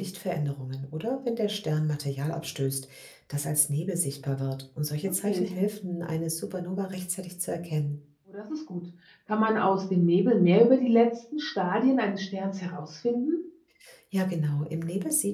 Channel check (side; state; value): both; identical; correlation 1.00